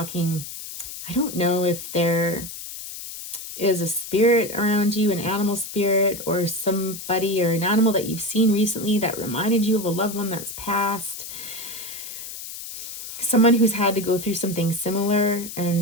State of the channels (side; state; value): left; noise; hiss, 10 dB below the sound